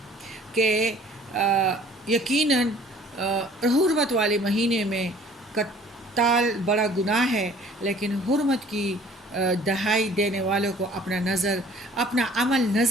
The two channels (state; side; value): normal; both; correlation 0.53